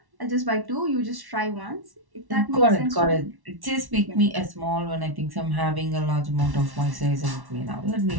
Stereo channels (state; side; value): late; left; 1.1 ms